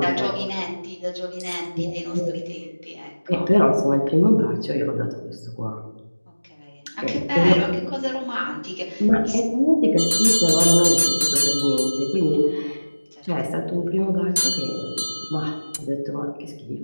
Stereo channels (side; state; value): both; inverted; correlation -1.00